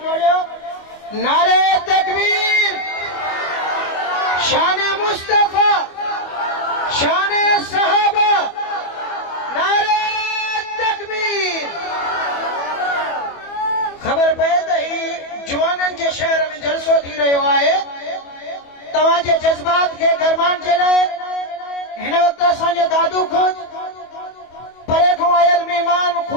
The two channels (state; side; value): late; right; 25 ms